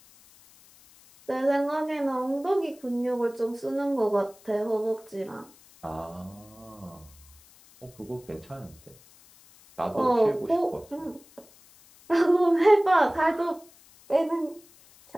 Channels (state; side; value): noise; left; hiss, 26 dB below the sound